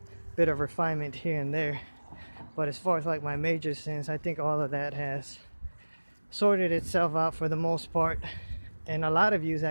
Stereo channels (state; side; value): inverted; both; correlation -1.00